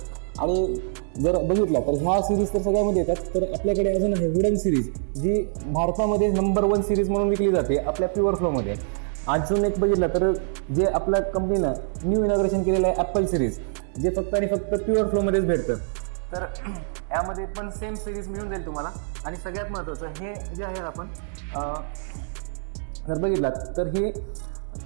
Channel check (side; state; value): left; silent; digital silence